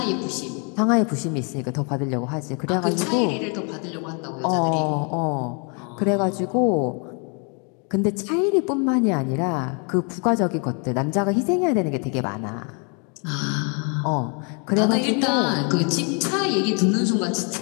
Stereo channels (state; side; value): quieter; right; 36.8 dB